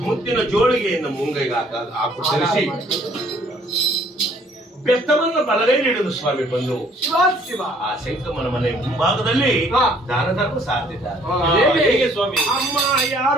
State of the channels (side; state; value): both; normal; correlation 0.60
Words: ಮುತ್ತಿನ ಜೋಳಿಗೆಯನ್ನು ಮುಂಗೈಗೆ ಹಾಕು ಧರಿಸಿ ಬೆತ್ತವನ್ನು ಬಲಗೈಲಿ ಹಿಡಿದು ಸ್ವಾಮಿ ಬಂದು ಆ ಶಂಕಮನ ಮನೆ ಮುಂಭಾಗದಲ್ಲಿ ದಾನ ಧರ್ಮ ಸಾಧಿದ್ದಾರೆ. ಹೇಗೆ ಸ್ವಾಮಿ? ಅಮ್ಮ